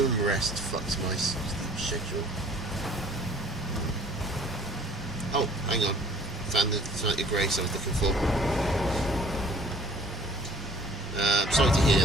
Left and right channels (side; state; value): both; normal; correlation 0.54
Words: rest fucks my schedule. Oh, hang on. Found the Site of Grace I was looking for. I'm sorry to hear